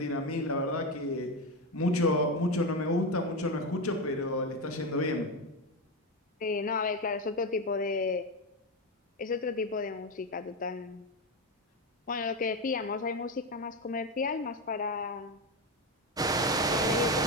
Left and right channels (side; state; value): both; normal; correlation 0.13